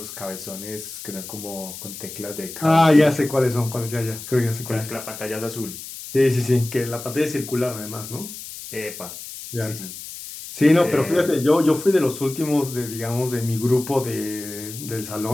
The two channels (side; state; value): left; noise; hiss, 11 dB below the sound